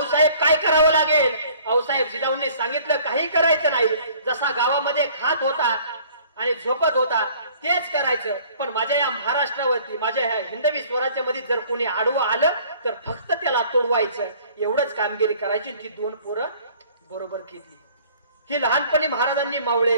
काय करावं लागेल? आऊसाहेब जिजाऊंनी सांगितलं, काही करायचं नाही, जसा गावामध्ये खात होता आणि झोपत होता तेच करायचं. पण माझ्या या महाराष्ट्रावरती, माझ्या ह्या हिंदवी स्वराज्यामध्ये जर कोणी आडवं आलं तर फक्त त्याला तोडवायचं, एवढंच कामगिरी करायची. ती 2 पोरं बरोबर केली. ही लहानपणी महाराजांनी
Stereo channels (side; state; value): both; inverted; correlation -0.53